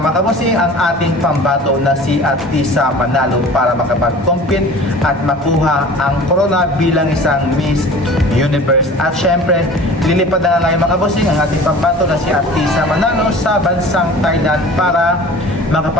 kabusing ang ating pambato na si Atisa Manalo para makapag-compete at makuha ang corona bilang isang Miss Universe. At syempre, lilipad na nga ngayon mga kabusing ang ating pambato na si Atisa Manalo sa bansang Thailand para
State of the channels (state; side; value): normal; both; correlation 0.42